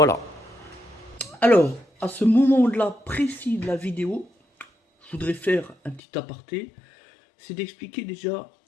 Alors, à ce moment-là précis de la vidéo, je voudrais faire un petit aparté. C'est d'expliquer déjà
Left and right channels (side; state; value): right; drops out; at 6.0 s